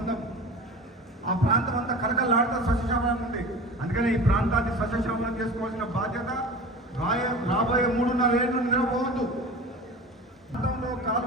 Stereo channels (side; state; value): both; normal; correlation 0.35